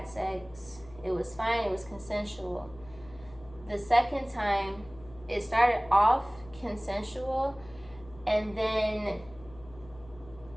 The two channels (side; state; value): left; noise; hum, 21 dB below the sound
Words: sex, it was fine, it was consensual. The second time, it started off consensual, and then